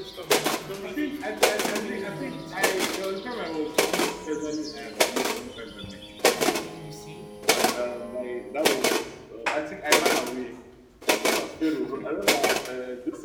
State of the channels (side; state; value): both; identical; correlation 1.00